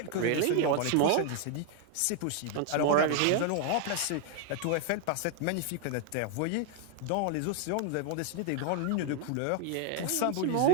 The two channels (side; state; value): both; different; correlation 0.01